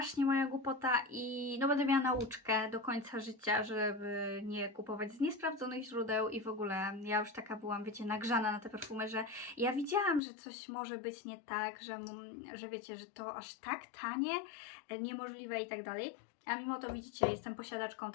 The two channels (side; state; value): right; drops out; at 10.2 s